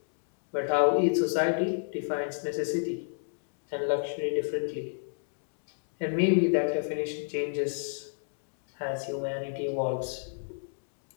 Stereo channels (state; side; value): silent; right; digital silence